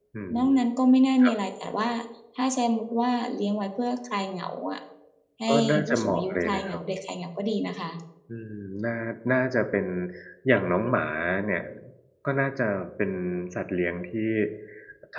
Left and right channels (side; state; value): both; identical; correlation 1.00